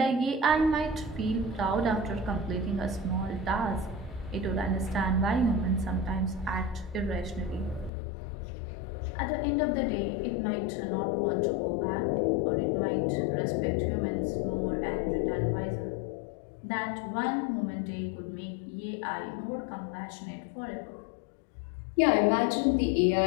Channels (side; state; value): right; drops out; at 7.9 s